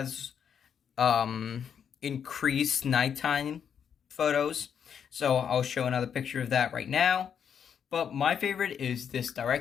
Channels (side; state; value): right; quieter; 7.8 dB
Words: increased nighttime photos. So I'll show another picture of that right now. But my favorite is this